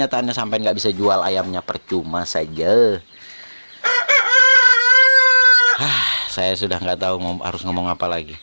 sampean nggak bisa jual ayamnya, percuma saja. Saya sudah nggak tahu harus ngomong apa lagi.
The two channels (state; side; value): inverted; both; correlation -1.00